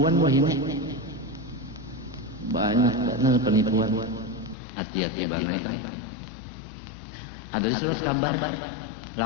wah ini banyak penipuan hati-hati banget ada di surat kabar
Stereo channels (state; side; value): drops out; right; at 4.5 s